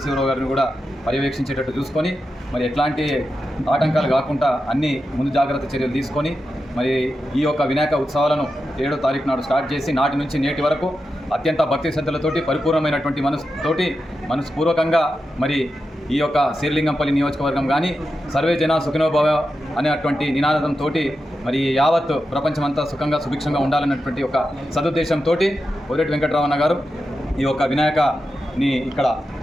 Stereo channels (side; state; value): both; normal; correlation 0.89